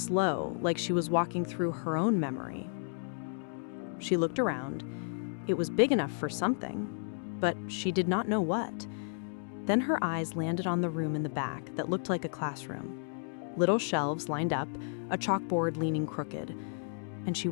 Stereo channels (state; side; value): silent; right; digital silence